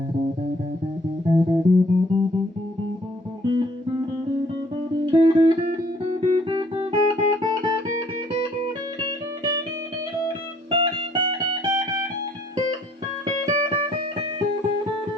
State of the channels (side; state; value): both; normal; correlation 0.60